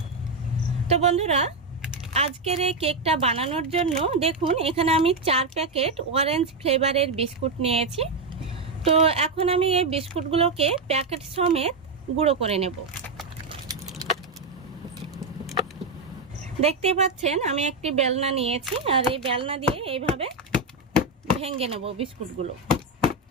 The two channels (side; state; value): left; quieter; 3.4 dB